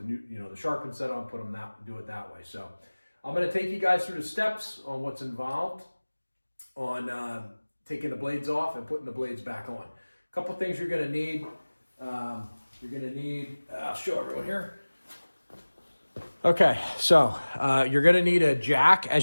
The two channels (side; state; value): both; inverted; correlation -1.00